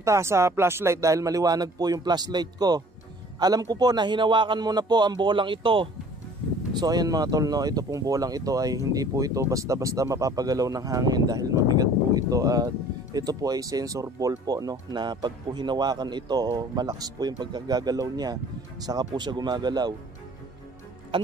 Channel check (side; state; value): both; normal; correlation 0.51